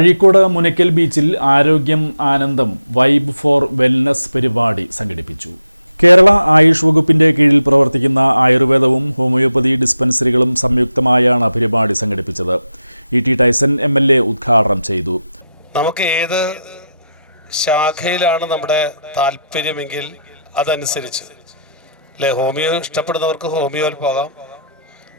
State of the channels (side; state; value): both; inverted; correlation -0.84